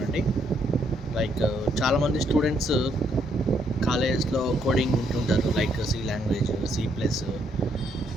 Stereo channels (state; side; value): normal; both; correlation 0.73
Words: లైక్ చాలామంది స్టూడెంట్స్ కాలేజ్లో కోడింగ్ వింటుంటారు, లైక్ సి లాంగ్వేజ్, C+,